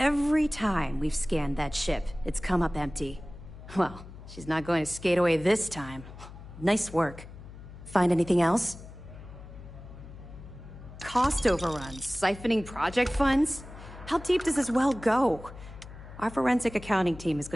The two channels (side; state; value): left; noise; hum, 15 dB below the sound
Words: time we've scanned that ship, it's come up empty. Well, she's not going to skate away this time. Nice work. Find anything else? Cost overruns, siphoning project funds? How deep does this well go? Our forensic accounting team is